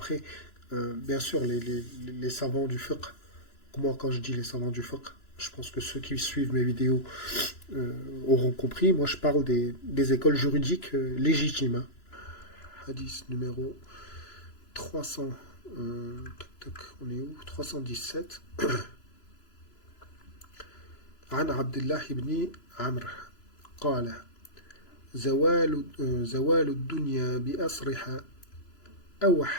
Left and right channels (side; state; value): right; late; 3.0 ms